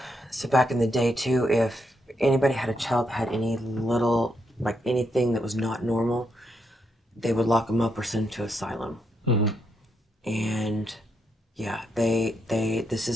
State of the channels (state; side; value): normal; both; correlation 0.80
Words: so back in the day too, if anybody had a child that had any little, like anything that was not normal, they would lock them up or send them to asylum. And yeah, this